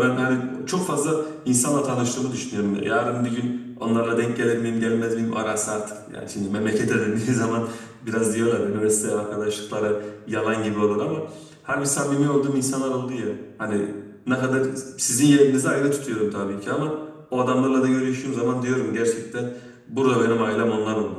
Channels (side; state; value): both; identical; correlation 1.00